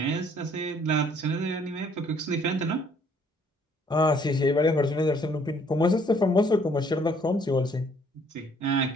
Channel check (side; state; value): both; normal; correlation 0.63